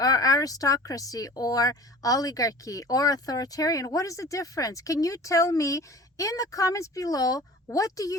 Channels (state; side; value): normal; both; correlation 0.41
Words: aristocracy or oligarchy or authoritarian? What is the difference? Can you tell me in the comments below, what do